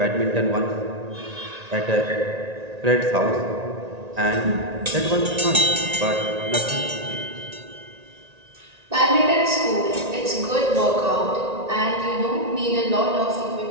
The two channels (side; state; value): left; late; 1.9 ms